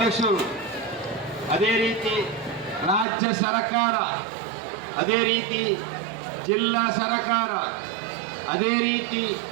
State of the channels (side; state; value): left; drops out; at 3.1 s